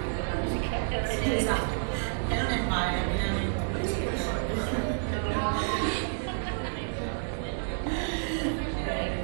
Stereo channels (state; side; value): silent; left; digital silence